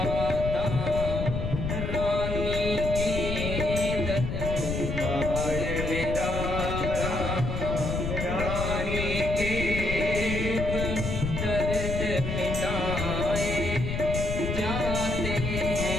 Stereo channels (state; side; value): noise; left; rumble, 3 dB below the sound